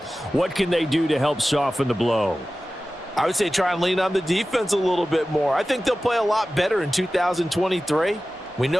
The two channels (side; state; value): both; normal; correlation 0.95